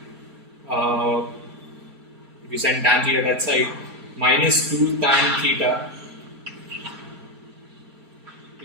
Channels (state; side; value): late; left; 4.3 ms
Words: if you send tan theta that side, minus 2 tan theta